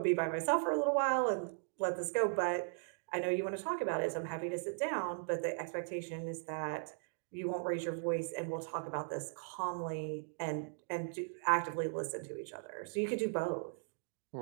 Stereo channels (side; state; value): left; silent; digital silence